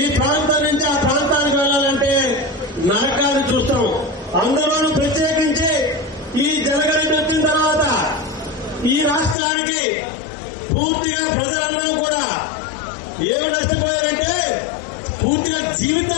ఈ ప్రాంతం నుంచి ఆ ప్రాంతానికి వెళ్ళాలంటే నరకాన్ని చూస్తాం. అందులోనూ ప్రత్యేకించి ఈ జనగణన వచ్చిన తర్వాత ఈ రాష్ట్రానికి పూర్తిగా ప్రజలందరూ కూడా ఏమి నష్టపోయారంటే పూర్తిగా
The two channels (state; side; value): drops out; right; at 9.3 s